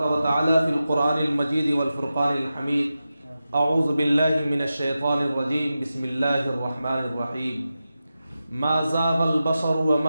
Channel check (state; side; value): inverted; both; correlation -0.92